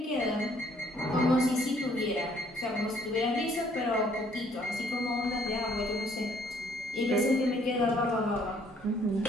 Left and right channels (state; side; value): normal; both; correlation 0.63